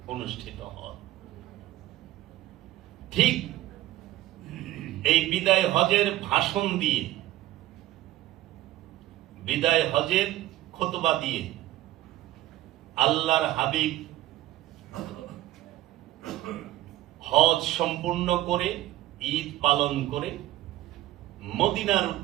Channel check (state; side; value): quieter; left; 15.3 dB